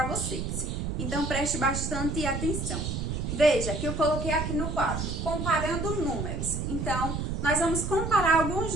vocês. Então, preste bastante atenção. Veja que eu coloquei aqui no quadro, comparando números. Então, nós vamos comparar alguns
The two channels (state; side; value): noise; right; rumble, 3 dB below the sound